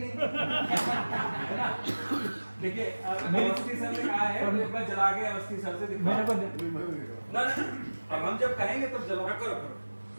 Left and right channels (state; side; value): inverted; both; correlation -1.00